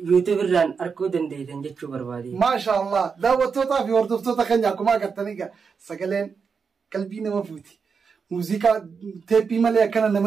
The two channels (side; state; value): left; quieter; 5.7 dB